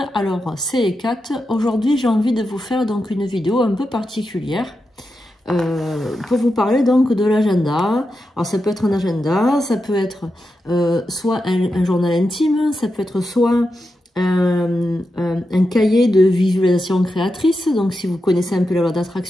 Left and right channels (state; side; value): normal; both; correlation 0.88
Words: Alors c'est Ekat. Aujourd'hui j'ai envie de vous faire donc une vidéo un peu particulière pour vous parler donc de l'agenda. Alors ça peut être un agenda, ça peut être soit un journal intime, ça peut être soit un cahier de visualisation créatrice, donc si vous connaissez un peu la loi